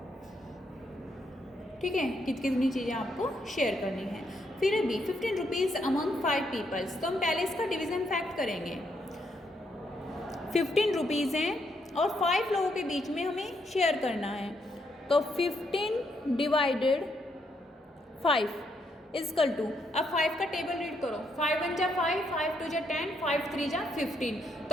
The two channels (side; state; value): both; normal; correlation 0.76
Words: ठीक है, कितनी चीज़ें आपको शेयर करनी है। फिर अभी 15 रुपीज़ अमंग 5 पीपल्स, तो हम पहले इसका डिवीजन फैक्ट करेंगे। 15 रुपीज़ हैं और 5 लोगों के बीच में हमें शेयर करना है, तो 15 डिवाइडेड 5 इजकल टू, अब 5 का टेबल रीड करो, 5 1 जा 5, 5 2 जा 10, 5 3 जा 15,